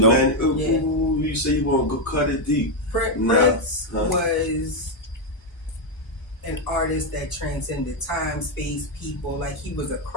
Man, Yeah. ooh, you say you want to go cut it deep. Prince was an artist that transcended time, space, people. Like, he was a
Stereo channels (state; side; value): normal; both; correlation 0.03